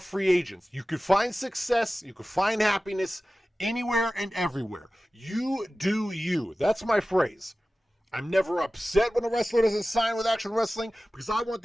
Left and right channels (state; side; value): normal; both; correlation 0.96